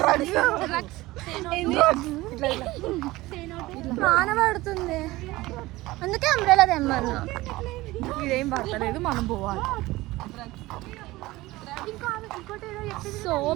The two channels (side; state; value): left; quieter; 19.1 dB